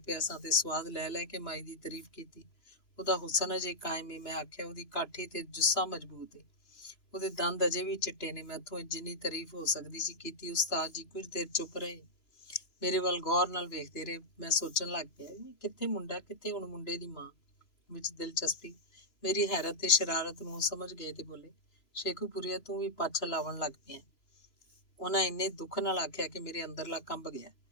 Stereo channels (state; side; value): late; right; 3.0 ms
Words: ਪਿਆ ਸਾਂ ਤੇ ਸਵਾਦ ਲੈ ਲੈ ਕੇ ਮਾਈ ਦੀ ਤਾਰੀਫ ਕੀਤੀ। ਉਹਦਾ ਹੁਸਨ ਅਜੇ ਕਾਇਮ ਏ। ਮੈਂ ਆਖਿਆ, ਉਹਦੀ ਕਾਠੀ ਤੇ ਜੁੱਸਾ ਮਜ਼ਬੂਤ ਏ, ਉਹਦੇ ਦੰਦ ਅਜੇ ਵੀ ਚਿੱਟੇ ਨੇ। ਮੈਥੋਂ ਜਿੰਨੀ ਤਾਰੀਫ ਹੋ ਸਕਦੀ ਸੀ ਕੀਤੀ। ਉਸਤਾਦ ਜੀ ਕੁਝ ਦੇਰ ਚੁੱਪ ਰਹੇ, ਮੇਰੇ ਵੱਲ ਗੌਰ ਨਾਲ ਵੇਖਦੇ ਰਹੇ। ਮੈਂ ਸੋਚਣ ਲੱਗ ਪਿਆ, ਕਿੱਥੇ ਮੁੰਡਾ, ਕਿੱਥੇ ਹੁਣ ਮੁੰਡੇ ਦੀ ਮਾਂ ਵਿੱਚ ਦਿਲਚਸਪੀ। ਮੇਰੀ ਹੈਰਤ ਤੇ ਸ਼ਰਾਰਤ ਨੂੰ ਸਮਝ ਗਏ ਤੇ ਬੋਲੇ, ਸ਼ੇਖੂਪੁਰੀਆ ਤੂੰ ਵੀ ਪਾਛਾ ਲਾਵਣ ਲੱਗ ਪਿਆ। ਉਹਨਾਂ ਇੰਨੇ ਦੁੱਖ ਨਾਲ ਆਖਿਆ ਕਿ ਮੇਰੇ ਅੰਦਰਲਾ ਕੰਬ ਗਿਆ।